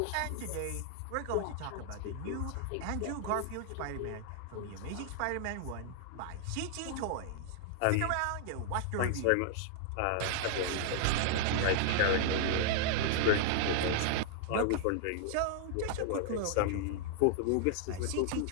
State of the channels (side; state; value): both; different; correlation -0.01